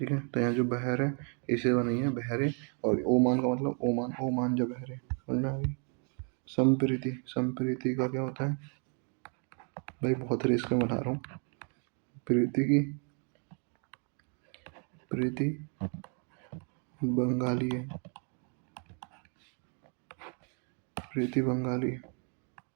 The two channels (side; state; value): left; quieter; 39.5 dB